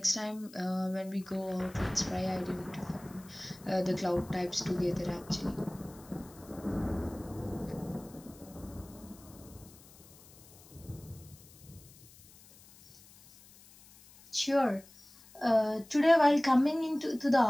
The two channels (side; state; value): left; noise; hiss, 23 dB below the sound